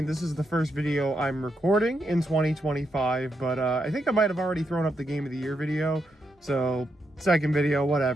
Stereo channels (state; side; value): normal; both; correlation 0.82